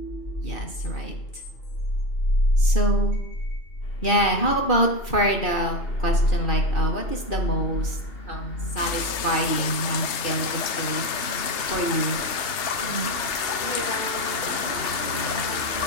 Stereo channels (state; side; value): late; right; 3.2 ms